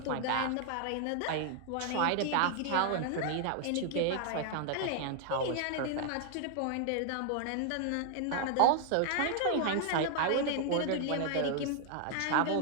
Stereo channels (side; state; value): both; different; correlation 0.00